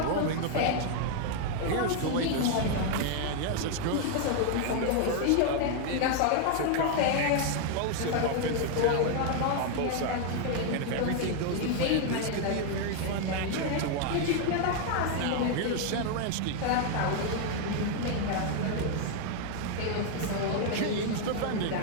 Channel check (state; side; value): different; both; correlation 0.00